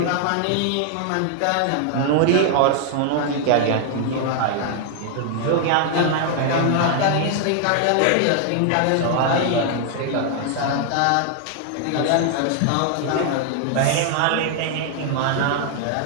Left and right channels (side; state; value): both; different; correlation 0.00